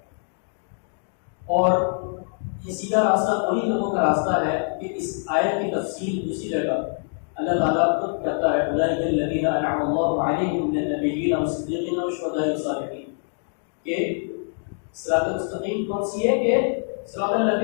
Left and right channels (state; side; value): silent; right; 61 dB below the other